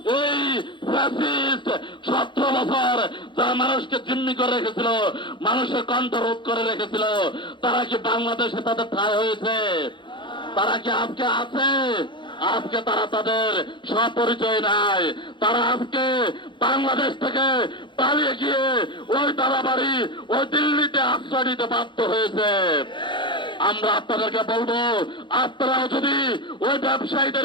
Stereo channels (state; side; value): late; right; 0.23 ms